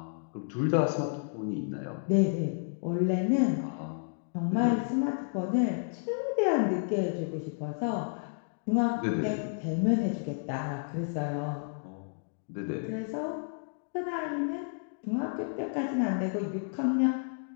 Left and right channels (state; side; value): silent; right; digital silence